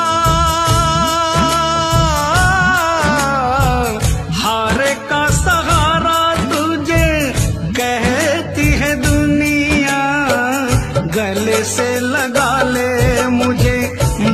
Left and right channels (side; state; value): both; identical; correlation 1.00